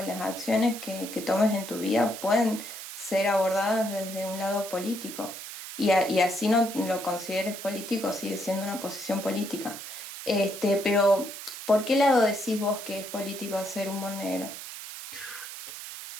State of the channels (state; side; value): noise; right; hiss, 10 dB below the sound